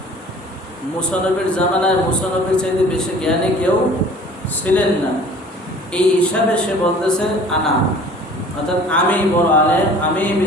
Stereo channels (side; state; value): both; normal; correlation 0.48